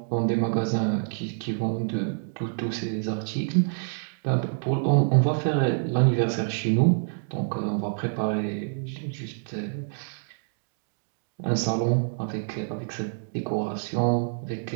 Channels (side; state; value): left; silent; digital silence